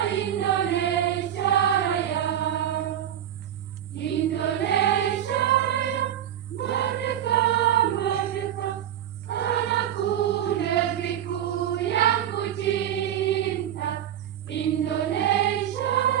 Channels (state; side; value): quieter; left; 10.6 dB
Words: Indonesia Raya. Indonesia Raya, merdeka, merdeka, tanahku, negeriku yang ku cinta. Indonesia